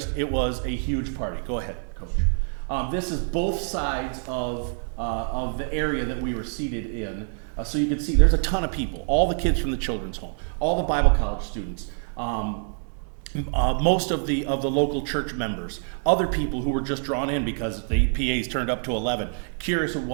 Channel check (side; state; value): left; silent; 61 dB below the other